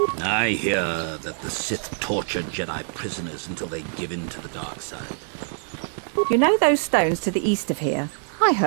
I hear that the Sith tortured Jedi prisoners until they give in to the dark side. You know those stones to the east of here? I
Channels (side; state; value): left; silent; 62 dB below the other